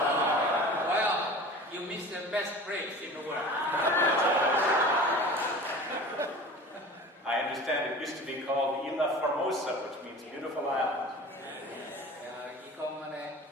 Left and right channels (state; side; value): normal; both; correlation 0.38